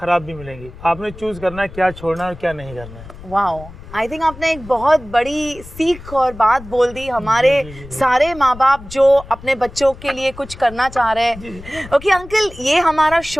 भी मिलेंगी. आपने चूज़ करना है क्या छोड़ना है और क्या नहीं करना है. वाओ, आई थिंक आपने एक बहुत बड़ी सीख और बात बोल दी हमारे सारे माँ बाप जो अपने बच्चों के लिए कुछ करना चाह रहे हैं. ओके अंकल, ये हमारा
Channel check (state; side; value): noise; left; rumble, 16 dB below the sound